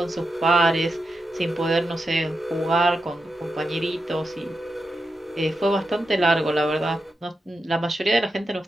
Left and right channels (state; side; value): normal; both; correlation 0.88